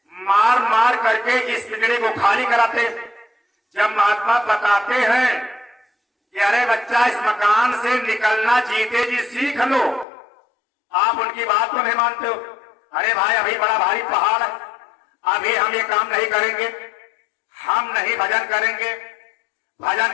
मार मार करके इस पिंजरे को खाली कराते। जब महात्मा बताते हैं कि अरे बच्चा इस मकान से निकलना जीते जी सीख लो, आप उनकी बात को नहीं मानते हो। अरे भाई अभी बड़ा भारी पहाड़ है, अभी हम ये काम नहीं करेंगे, हम नहीं भजन करेंगे,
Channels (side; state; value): right; drops out; at 10.1 s